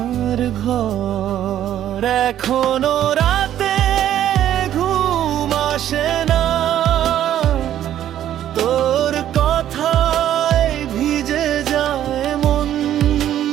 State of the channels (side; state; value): left; quieter; 11.4 dB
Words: ঘর। এখনো রাতে ঘুম আসে না, তোর কথায় ভিজে যায় মন।